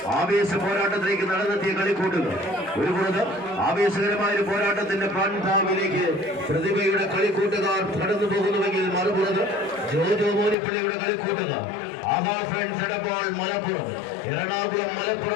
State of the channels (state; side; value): drops out; right; at 10.6 s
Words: ആവേശ പോരാട്ടത്തിലേക്ക് നടന്നെത്തിയ കളിക്കൂട്ടുകൾ. ഒരു പുറത്ത് ആവേശകരമായ ഒരു പോരാട്ടത്തിന്റെ പാൻതാവിലേക്ക് പ്രതിഭയുടെ കളിക്കൂട്ടുകാർ കടന്നു പോകുന്നുവെങ്കിൽ മറുപുറത്ത് ജോജോ മോനിപ്പള്ളിയുടെ കളിക്കൂട്ടുകാർ ആഹാ ഫ്രണ്ട്സ് എടപ്പാൾ മലപ്പുറം എറണാകുളം